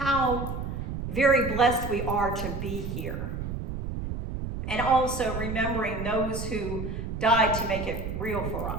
very blessed we are to be here. And also remembering those who died to make it real for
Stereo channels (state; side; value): noise; right; rumble, 5 dB below the sound